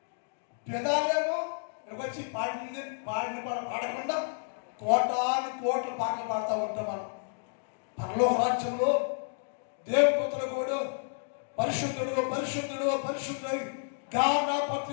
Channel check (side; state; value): right; silent; digital silence